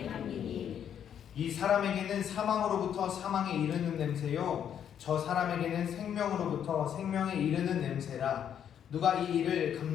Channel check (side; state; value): right; quieter; 9.1 dB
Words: 향기니 이 사람에게는 사망으로부터 사망에 이르는 냄새요 저 사람에게는 생명으로부터 생명에 이르는 냄새라. 누가 이 일을